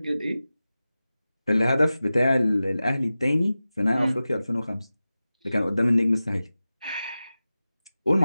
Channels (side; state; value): both; inverted; correlation -0.95